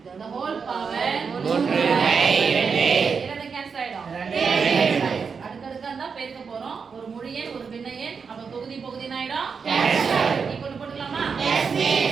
the whole power 3/2 இரண்டு கேன்சல் ஆயிடும் அடுத்தடுத்து அந்த பெருக்க போறோம் ஒரு முழு எண் ஒரு பின்ன எண் அப்ப தொகுதி பகுதி ஆயிடும் நீ கொண்டு போட்டுக்கலாமா Yes,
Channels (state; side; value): quieter; left; 5.7 dB